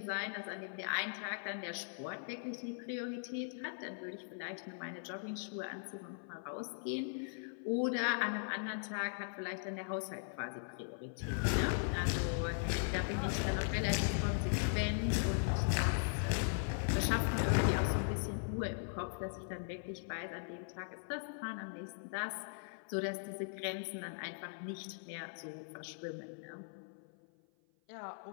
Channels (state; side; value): silent; right; 51 dB below the other